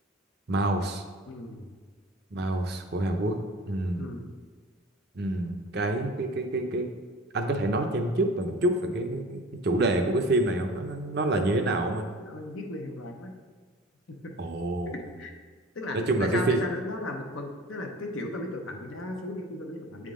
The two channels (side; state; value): both; normal; correlation 0.42